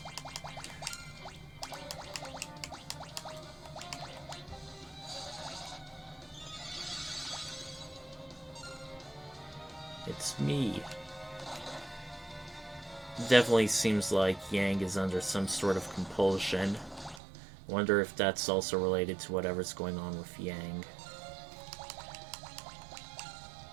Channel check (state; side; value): drops out; left; at 17.2 s